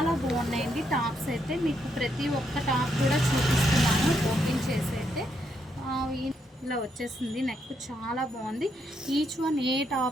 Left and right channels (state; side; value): normal; both; correlation 0.77